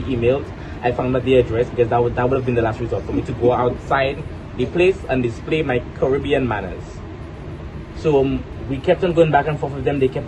emailed. I found out the address because that would have been the last resort for me to go outside the place and display my Caribbean manners. So we kept on going back and forth with them. They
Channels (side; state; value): both; identical; correlation 1.00